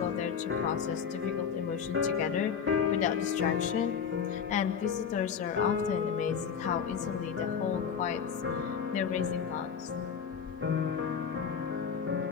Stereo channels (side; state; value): right; quieter; 7.0 dB